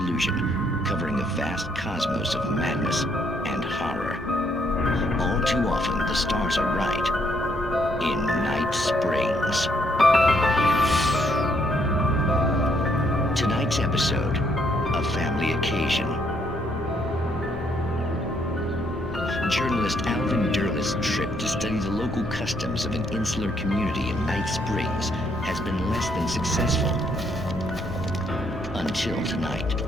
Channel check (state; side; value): normal; both; correlation 0.71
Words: covering a vast cosmos of madness and horror. All too often, the stars are right. In Night Springs. Tonight's episode, A Family Occasion. Journalist Alvin Derleth's trip to study the local customs of an insular community in Night Springs has been less than successful. Until tonight.